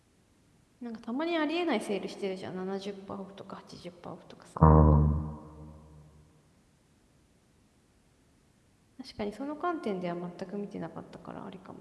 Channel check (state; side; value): identical; both; correlation 1.00